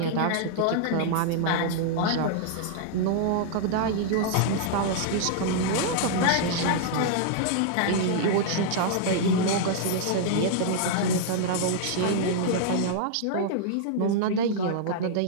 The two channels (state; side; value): different; both; correlation -0.01